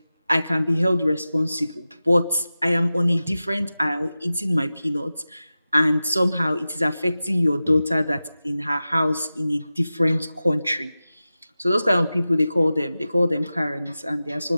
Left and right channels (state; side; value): inverted; both; correlation -0.95